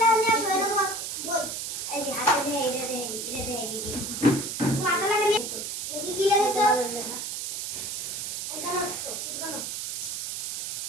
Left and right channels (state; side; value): noise; right; hiss, 4 dB below the sound